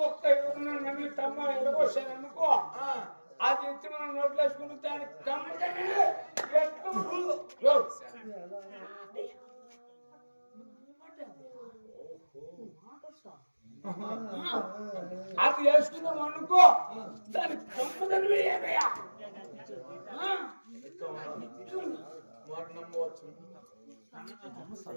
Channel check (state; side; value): inverted; both; correlation -1.00